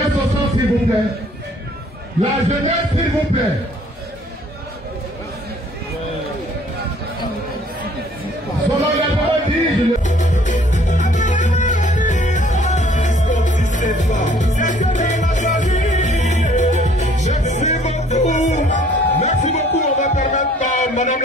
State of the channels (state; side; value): normal; both; correlation 0.58